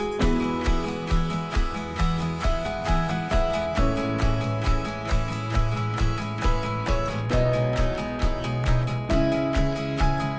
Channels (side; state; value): both; identical; correlation 1.00